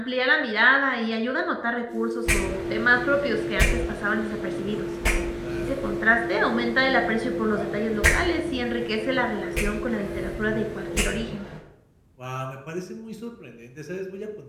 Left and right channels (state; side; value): identical; both; correlation 1.00